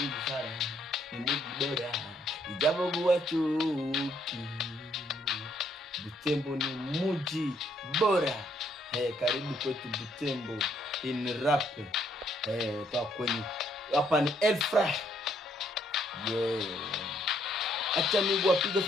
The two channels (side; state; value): both; normal; correlation 0.70